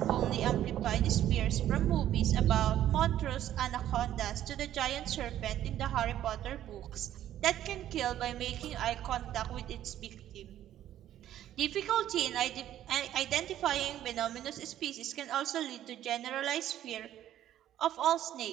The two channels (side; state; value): left; quieter; 12.0 dB